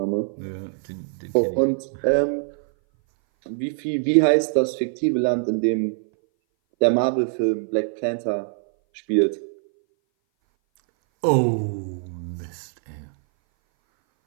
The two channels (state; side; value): silent; left; 59 dB below the other